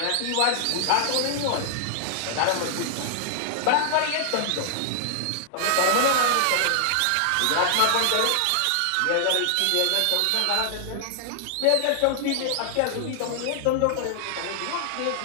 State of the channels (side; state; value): both; different; correlation -0.01